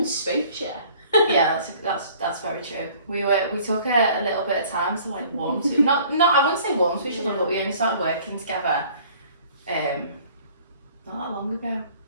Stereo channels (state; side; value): inverted; both; correlation -0.53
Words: spoke to you. Yeah, that's very true. We took a little bit of time to like warm to not I wouldn't say warm to each other, but we only started working together not that long ago.